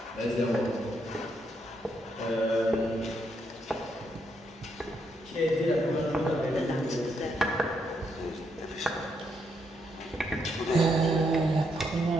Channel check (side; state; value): both; normal; correlation 0.77